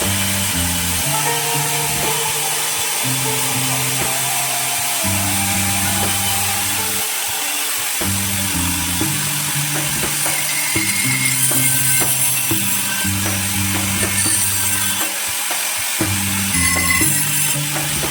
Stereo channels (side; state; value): both; identical; correlation 1.00